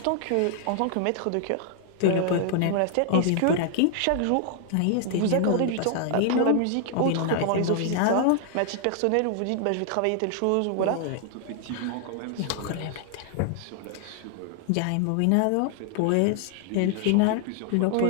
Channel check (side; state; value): both; different; correlation 0.00